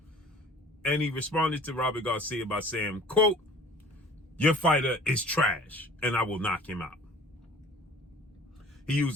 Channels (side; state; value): both; normal; correlation 0.48